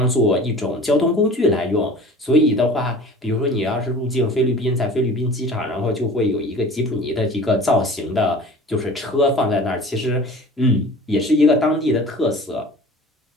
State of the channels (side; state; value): both; normal; correlation 0.42